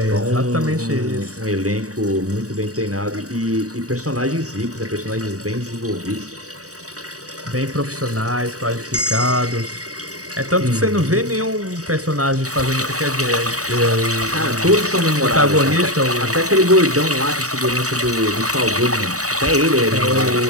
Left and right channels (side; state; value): left; late; 0.66 ms